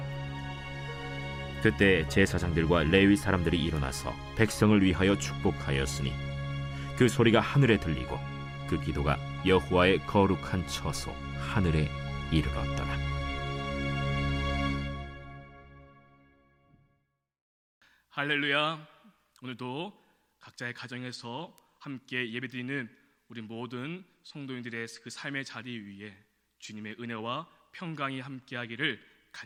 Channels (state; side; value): identical; both; correlation 1.00